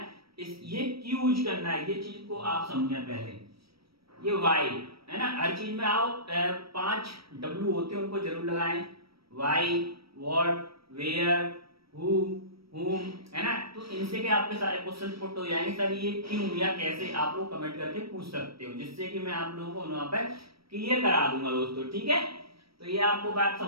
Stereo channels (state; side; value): late; left; 0.75 ms